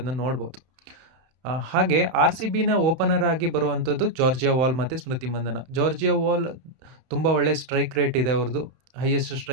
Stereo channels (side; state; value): left; late; 31 ms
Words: ನೋಡ್ಬೋದು. ಹಾಗೆ RCBನ ಓಪನರ್ ಆಗಿ ಬರುವಂಥದ್ದು ಜಾರ್ಜಿಯಾ ವಾಲ್ ಮತ್ತು ಸ್ಮೃತಿ ಮಂದನ. ಜಾರ್ಜಿಯಾ ವಾಲ್ ತುಂಬ ಒಳ್ಳೆ ಸ್ಟ್ರೈಕ್ ರೇಟ್ ಇದೆ, ಅವ್ರದ್ದು ಹೈಯೆಸ್ಟ್